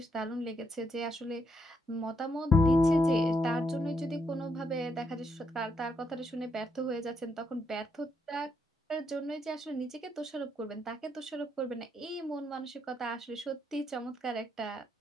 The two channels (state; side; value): normal; both; correlation 0.77